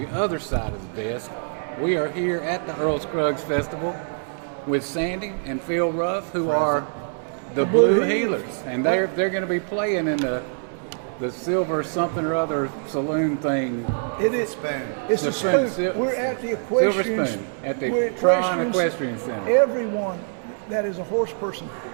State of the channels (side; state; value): left; silent; 62 dB below the other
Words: other side of the desk. We are here at the Earl Scruggs Festival with Sandy and Phil Ruff, who are the Blue Healers, and they're going to be playing in the silver something or other saloon thing. It is spoon. It's a spoon. We're at the equestrian. Silver Spoon at the Tron Equestrian Center. Everyone that is a horse person